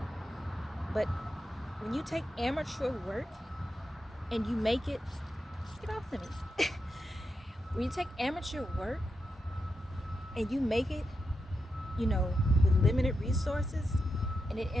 But when you take amateur work and you make it, get off to me. When you take amateur work and you make it, you know, with limited resources, and it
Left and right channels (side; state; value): both; normal; correlation 0.87